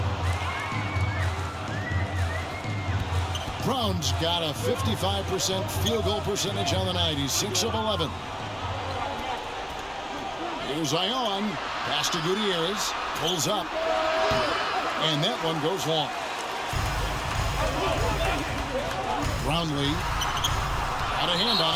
Brown's got a 55% field goal percentage on the night. He's 6 of 11. Here's Ion. Pass to Gutierrez. Pulls up. And that one goes long. Brownlee got a hand on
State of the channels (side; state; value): both; identical; correlation 1.00